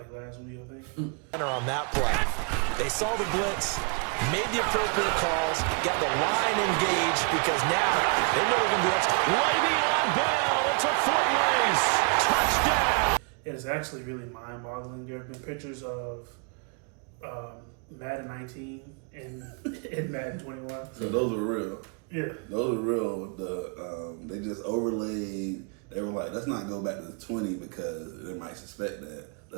last week, I think. On that play, they saw the blitz, made the appropriate calls, got the line engaged because now they know they're going to be extra. Le'Veon Bell, it's a foot race, touchdown. It is actually really mind-boggling. There have been pictures of Madden 19 and Madden 21. So those were real. Yeah. Those are real. They just overlaid. They were like, let's not go back to 20 because they might suspect that.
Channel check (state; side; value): quieter; left; 37.2 dB